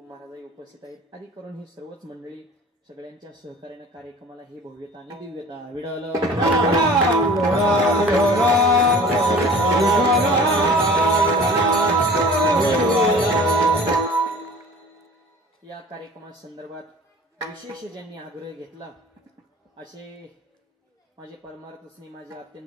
महाराजही उपस्थित आहेत. आदी करून ही सर्वच मंडळी सगळ्यांच्या सहकार्याने कार्यक्रमाला ही भव्यता आणि दिव्यता विडवलं. या कार्यक्रमासंदर्भात विशेष ज्यांनी आग्रह घेतला असे माझे परमार्थस्ने माझे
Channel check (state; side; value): normal; both; correlation 0.44